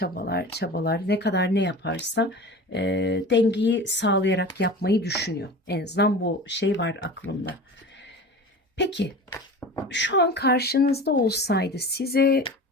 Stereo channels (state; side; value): normal; both; correlation 0.35